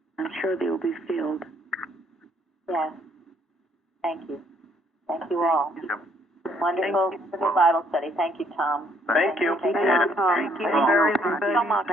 I'm sure they will be filled. Yes. Thank you. Thank you all. Yep. Wonderful Bible study. Thank you, Tom. Thank you. Thank you very much.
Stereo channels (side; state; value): both; normal; correlation 0.67